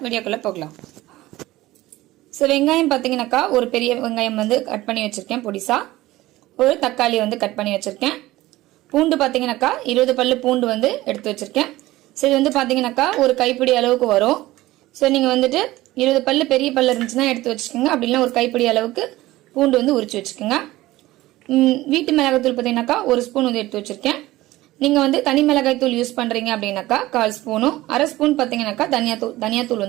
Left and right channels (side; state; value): left; quieter; 17.4 dB